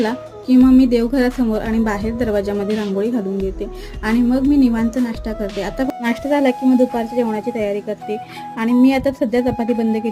की मग मी देवघरासमोर आणि बाहेर दरवाजामध्ये रांगोळी घालून घेते आणि मग मी निवांत नाश्ता करते. आता नाश्ता झाला की मग दुपारच्या जेवणाची तयारी करते आणि मी आता सध्या चपाती बंद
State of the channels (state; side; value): identical; both; correlation 1.00